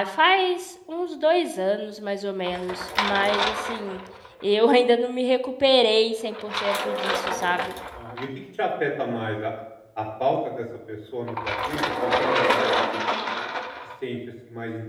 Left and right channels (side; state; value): both; identical; correlation 1.00